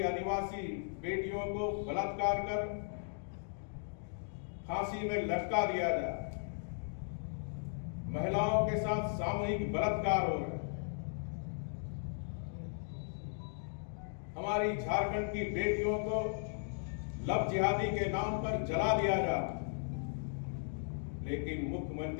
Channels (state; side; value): silent; right; digital silence